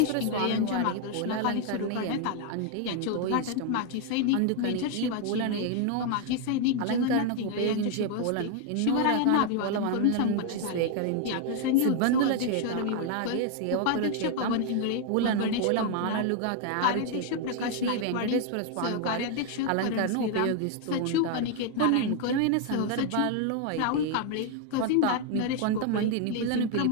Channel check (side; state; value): both; different; correlation 0.00